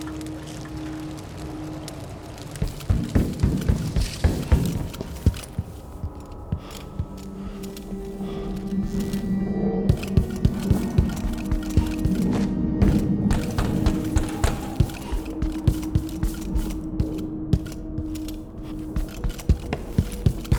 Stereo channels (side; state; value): both; identical; correlation 1.00